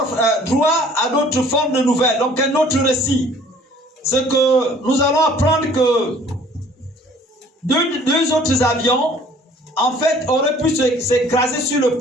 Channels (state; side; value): normal; both; correlation 0.54